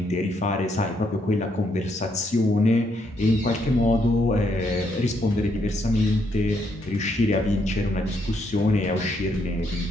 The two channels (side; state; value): both; normal; correlation 0.75